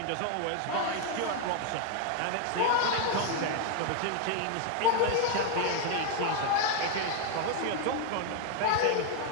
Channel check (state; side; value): different; both; correlation 0.01